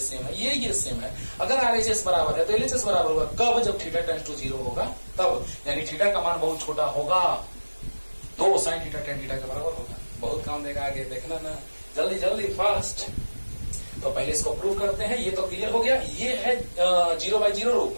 है, ये सेम है। अगर RHS बराबर है तो LHS बराबर होगा कब, जब थीटा टेंड्स टू 0 होगा तब, यानी थीटा का मान बहुत छोटा होगा तो sin थीटा tan थीटा के बराबर होगा। बहुत काम देगा आगे, देखना ना, जल्दी जल्दी फास्ट। तो पहले इसको प्रूव करते हैं, ये तो क्लियर हो गया। ये है 0/0 रूप,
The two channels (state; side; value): inverted; both; correlation -1.00